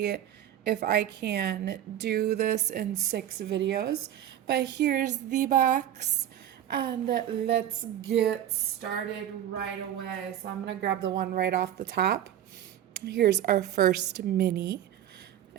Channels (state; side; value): quieter; left; 11.1 dB